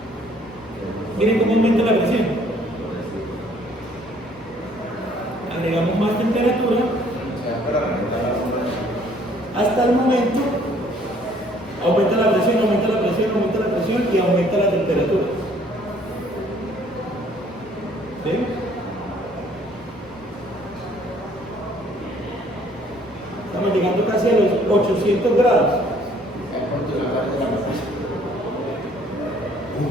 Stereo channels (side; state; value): both; normal; correlation 0.60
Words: Miren cómo aumenta la presión. Agregamos más temperatura hasta el momento aumenta la presión, aumenta la presión, aumenta la presión y aumenta la temperatura. ¿Sí? Estamos llegando casi a los 800 grados.